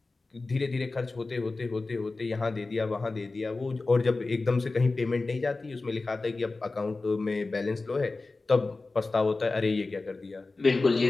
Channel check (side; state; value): right; quieter; 3.5 dB